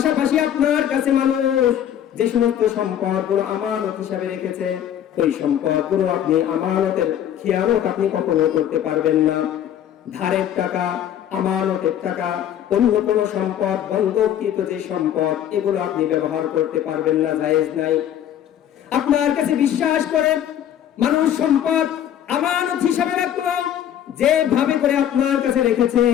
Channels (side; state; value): right; quieter; 10.4 dB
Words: আপনার কাছে মানুষ যে সমস্ত সম্পদগুলো আমানত হিসাবে রেখেছে ওই সম্পদগুলো আপনি আমানতের খেয়ানত আপনি কখনো করতে পারবেন না। ধারের টাকা, আমানতের টাকা, অন্য কোনো সম্পদ, বন্ধককৃত যে সম্পদ, এগুলো আপনি ব্যবহার করতে পারবেন না, জায়েজ নাই। আপনার কাছে বিশ্বাস করে মানুষ সম্পদ আমানত হিসাবে রাখলো, যেভাবে করে আপনার কাছে রেখেছে